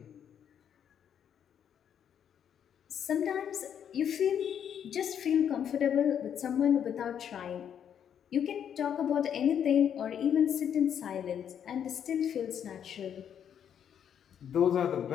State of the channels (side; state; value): right; quieter; 8.8 dB